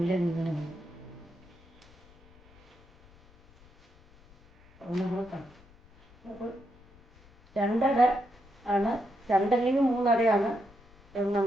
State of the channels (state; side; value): noise; left; rumble, 27 dB below the sound